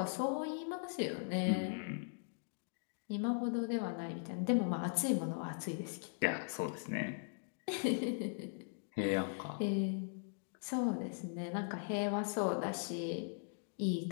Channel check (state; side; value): silent; right; digital silence